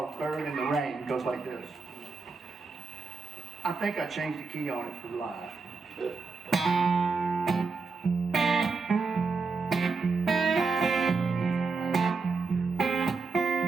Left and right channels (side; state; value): left; quieter; 4.3 dB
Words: "Bird in the Rain." It goes like this. I think I changed the key on it for live.